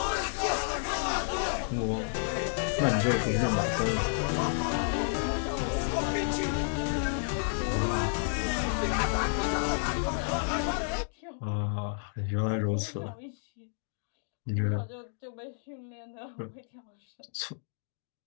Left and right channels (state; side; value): silent; right; digital silence